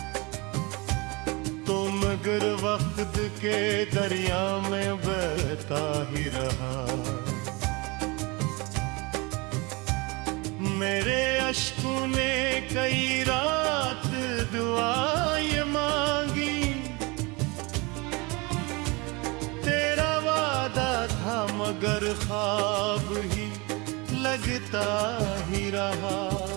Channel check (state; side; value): quieter; left; 26.8 dB